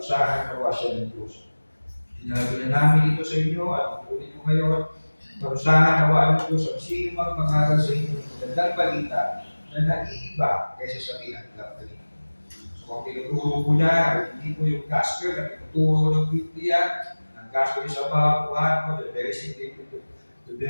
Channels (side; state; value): both; inverted; correlation -1.00